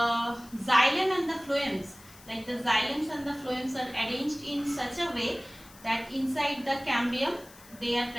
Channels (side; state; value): left; noise; hiss, 22 dB below the sound